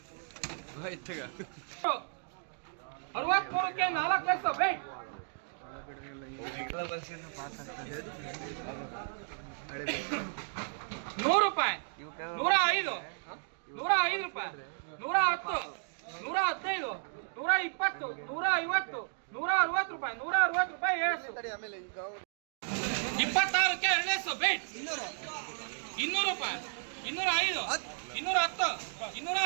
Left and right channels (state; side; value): silent; left; digital silence